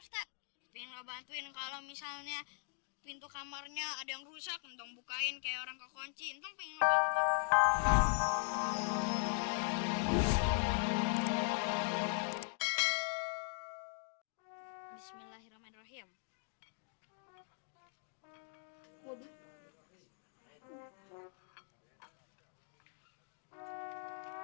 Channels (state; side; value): silent; right; 51 dB below the other